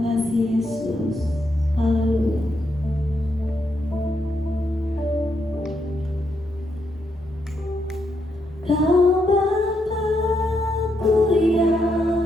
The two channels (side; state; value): both; normal; correlation 0.79